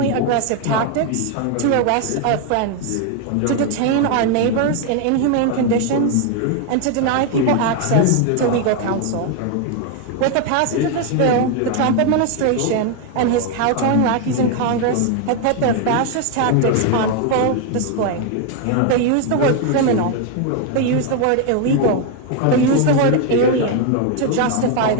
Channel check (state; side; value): different; both; correlation 0.01